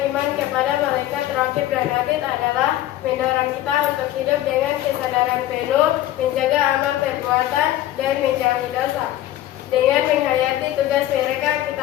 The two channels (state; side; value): quieter; right; 13.7 dB